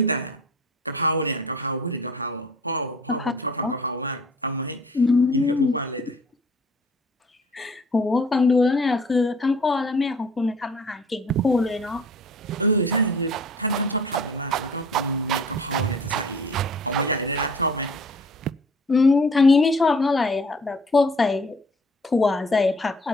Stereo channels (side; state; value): both; normal; correlation 0.51